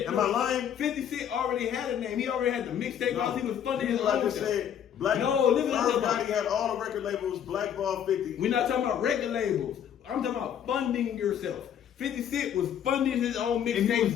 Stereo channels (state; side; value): quieter; right; 9.2 dB